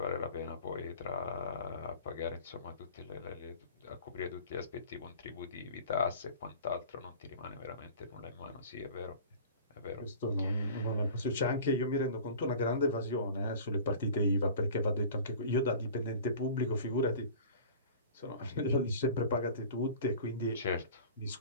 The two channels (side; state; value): both; inverted; correlation -0.41